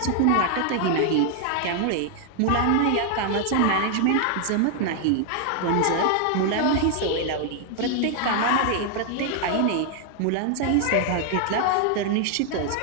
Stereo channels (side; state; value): both; different; correlation 0.00